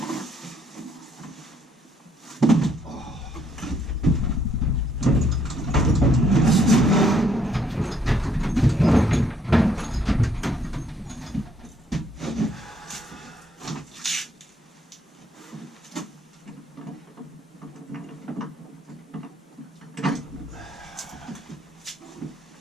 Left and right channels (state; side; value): normal; both; correlation 0.69